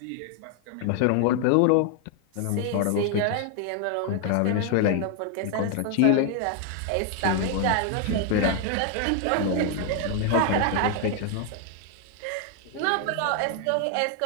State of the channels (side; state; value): both; different; correlation 0.00